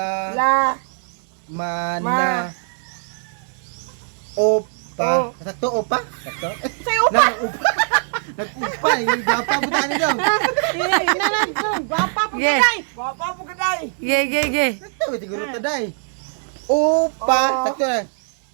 mana opa. Sakto opa? Sakto? Nang opa. Nag-upa, yung gwapa po tayo daw. Gwapa po kaday. Gwapa po kaday. Ge. Sakto, siguro taday. Upa, sakto na.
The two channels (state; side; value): silent; left; 63 dB below the other